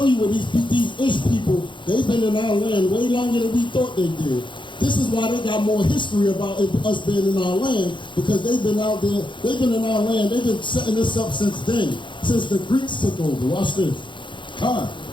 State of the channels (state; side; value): late; right; 0.23 ms